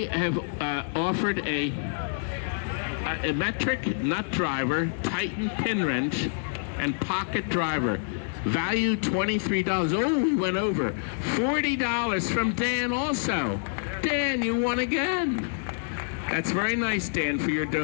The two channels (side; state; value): right; silent; digital silence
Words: have offered a metric nut driver, Titan pin wrench, and pocket driver. Value $23. Oh, we went over. $40 from Dan also. Dan, you won again. That's very nice, Dan, for your